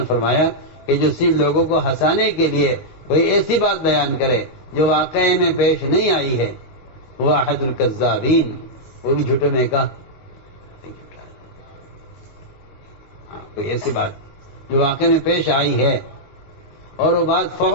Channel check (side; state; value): right; late; 19 ms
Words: فرمایا کہ جو صرف لوگوں کو ہنسانے کے لیے کوئی ایسی بات بیان کرے جو واقعے میں پیش نہیں آئی ہے وہ احد الکذابین، وہ بھی جھوٹے میں کا کوئی ایسی بات جو واقعے میں پیش آئی ہے اور وہ بات